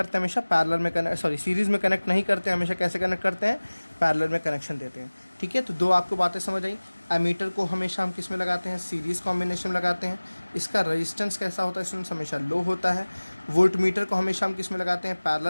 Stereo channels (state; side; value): inverted; both; correlation -1.00